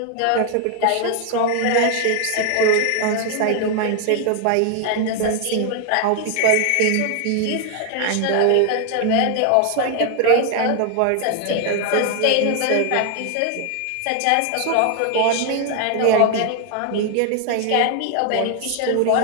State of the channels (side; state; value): both; different; correlation 0.00